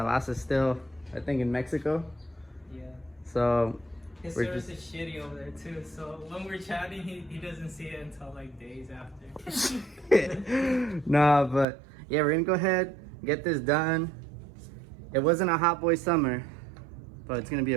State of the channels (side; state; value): left; drops out; at 11.7 s